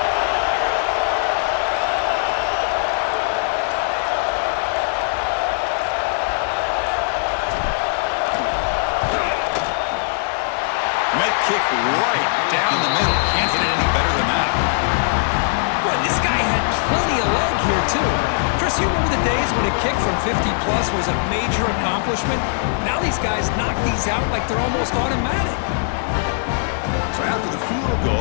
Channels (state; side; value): silent; right; 66 dB below the other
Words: Met kick right down the middle. Can't hit it any better than that. Boy, this guy had plenty of leg here, too. Chris, you remember the days when a kick from 50-plus was a major accomplishment? Now these guys knock these out like they're almost automatic. So So after the field